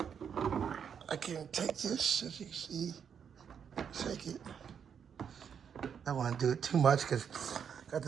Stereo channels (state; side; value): quieter; left; 7.5 dB